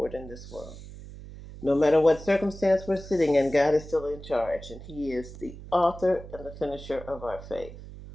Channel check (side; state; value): right; noise; hum, 14 dB below the sound